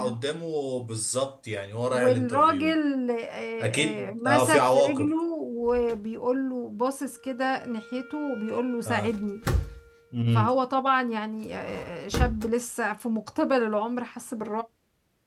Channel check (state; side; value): identical; both; correlation 1.00